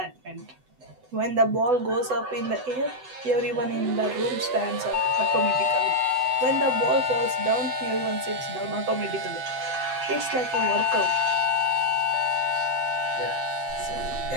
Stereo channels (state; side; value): late; left; 7.9 ms